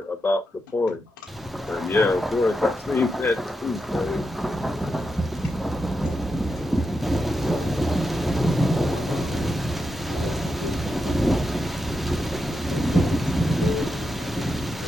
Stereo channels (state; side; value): normal; both; correlation 0.87